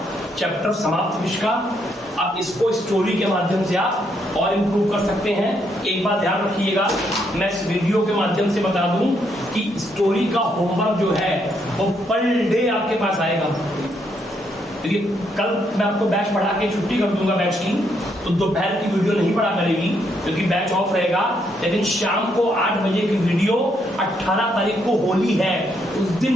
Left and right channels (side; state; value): both; normal; correlation 0.75